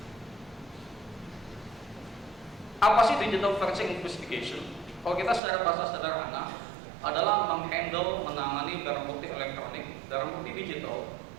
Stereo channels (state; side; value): drops out; left; at 5.4 s